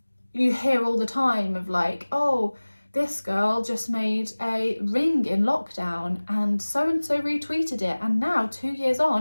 hear all the time of like, oh, this girl just made a ring in lockdown and so retweeted it, and now 2 years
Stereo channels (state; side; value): inverted; both; correlation -1.00